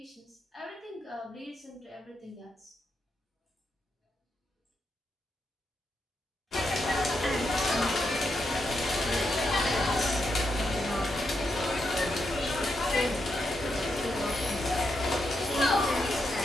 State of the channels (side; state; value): both; normal; correlation 0.83